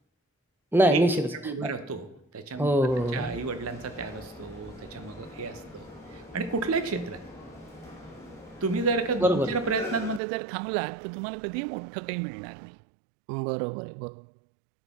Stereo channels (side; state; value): left; drops out; at 10.2 s